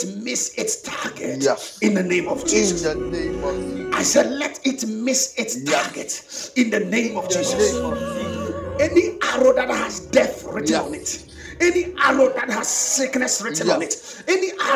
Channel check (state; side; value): identical; both; correlation 1.00